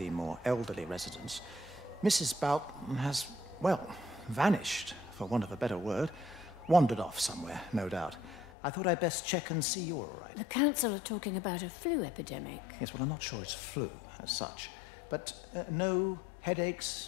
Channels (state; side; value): drops out; right; at 8.5 s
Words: more elderly residents. Mrs. Bout has, well, vanished, for want of a better word. Wandered off somewhere, no doubt. I thought I'd best check and see you're all right. The council are talking about a flu epidemic. Yes, well, I'm not sure it's flu as such. But no